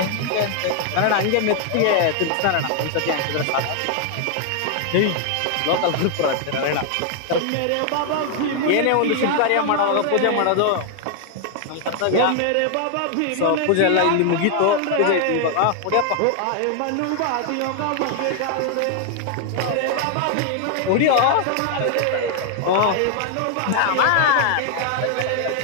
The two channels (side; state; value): both; different; correlation 0.00